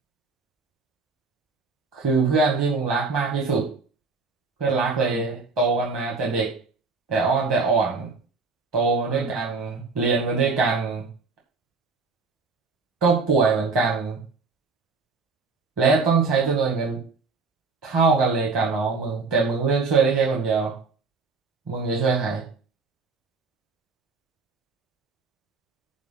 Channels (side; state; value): left; quieter; 4.2 dB